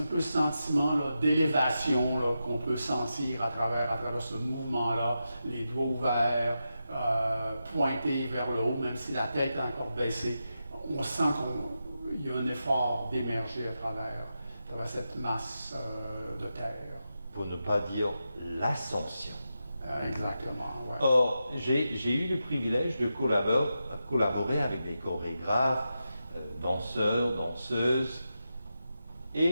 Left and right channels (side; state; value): both; inverted; correlation -0.89